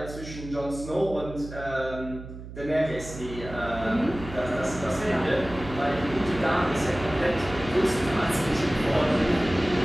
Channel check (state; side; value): noise; right; hum, 12 dB below the sound